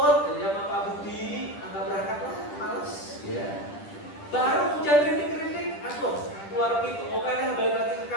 jadi sama Pak Budi, nggak berangkat lah, males. Ya. Baru hujan rintik-rintik, keluar pintu, oke dah balik lagi ke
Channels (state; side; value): late; right; 10 ms